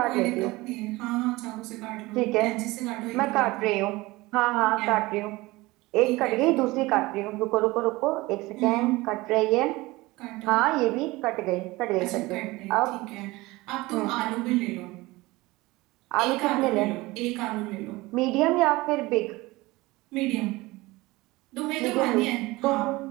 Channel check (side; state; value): left; quieter; 20.9 dB